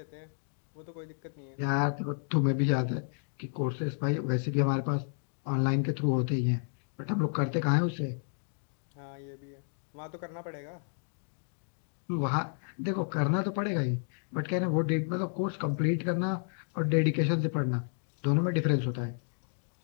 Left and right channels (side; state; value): right; silent; digital silence